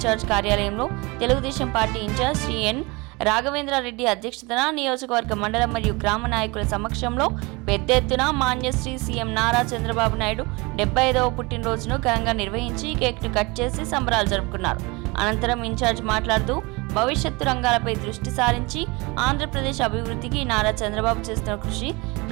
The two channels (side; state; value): left; quieter; 25.8 dB